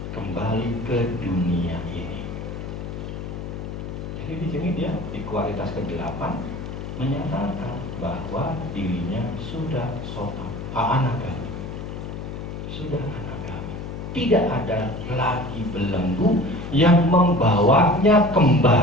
kembali ke dunia ini. Jadi di sini dia di kualitas ke-8 menyatakan bahwa dirinya sudah sota, anagami, sudah anagami. Tidak ada lagi belenggu yang membawanya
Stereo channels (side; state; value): left; noise; hum, 7 dB below the sound